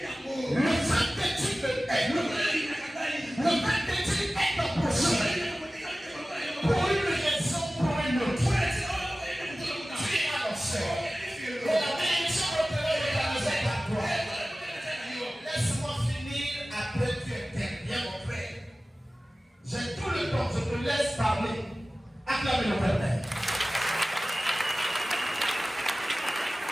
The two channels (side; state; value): both; normal; correlation 0.96